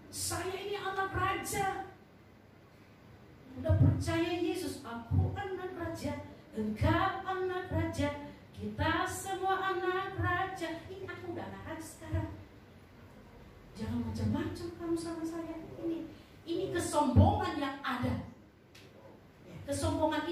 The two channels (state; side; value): identical; both; correlation 1.00